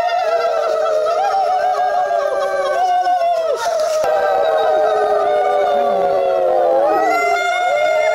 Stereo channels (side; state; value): both; identical; correlation 1.00